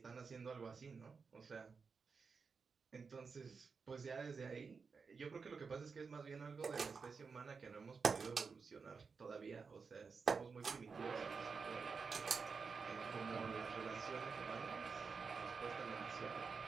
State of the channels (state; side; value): quieter; left; 5.1 dB